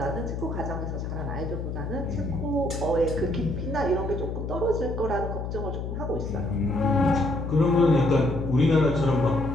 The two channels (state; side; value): noise; left; hum, 5 dB below the sound